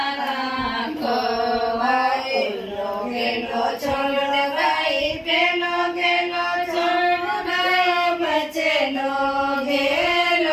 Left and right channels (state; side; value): identical; both; correlation 1.00